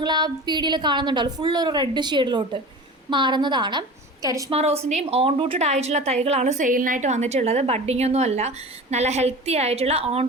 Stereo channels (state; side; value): normal; both; correlation 0.35